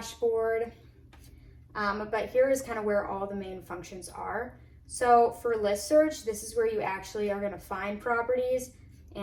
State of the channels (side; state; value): both; identical; correlation 1.00